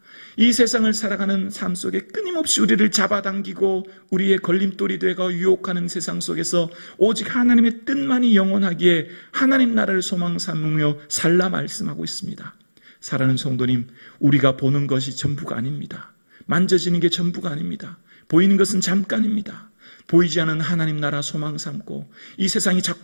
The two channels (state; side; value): inverted; both; correlation -1.00